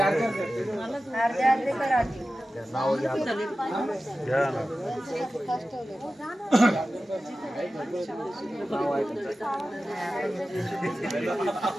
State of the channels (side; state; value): both; normal; correlation 0.95